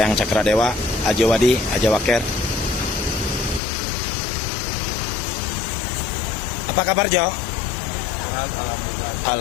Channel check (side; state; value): right; drops out; at 3.6 s